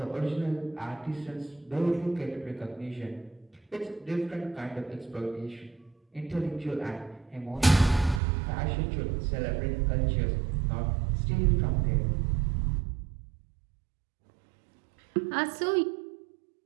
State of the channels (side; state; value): left; drops out; at 8.2 s